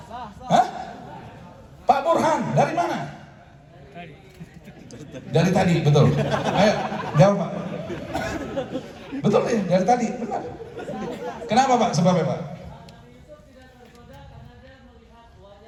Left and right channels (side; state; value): both; identical; correlation 1.00